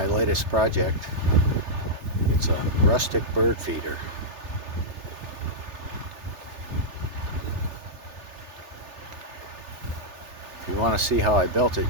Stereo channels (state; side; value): late; left; 3.3 ms